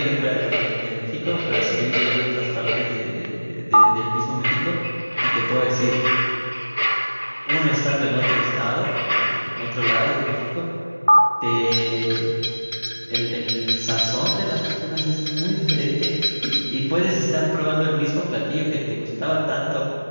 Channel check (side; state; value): both; inverted; correlation -1.00